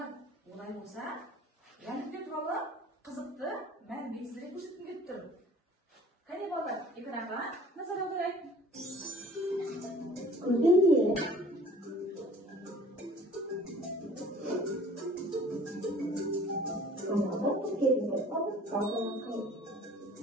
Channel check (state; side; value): normal; both; correlation 0.50